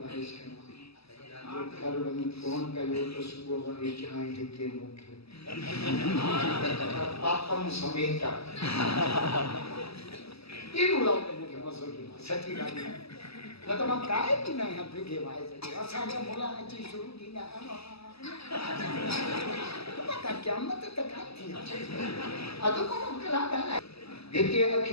जो घर वञी फोन कयो तो सुबुह वरी चांहि हिते मूंखे पापम समेत एड़ो लाउड मूंखे मज़ो ॾिनो सची ॻाल्हि आहे न त मां काए बि न आहियां बिगे वाइस असांजा मुला अची शुरू थींदा क़यामत त कान थी अधु कोन कलाक आहे हिते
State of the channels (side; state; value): right; late; 0.78 ms